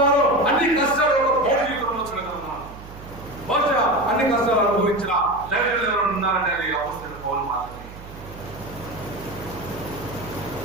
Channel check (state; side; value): noise; right; hum, 16 dB below the sound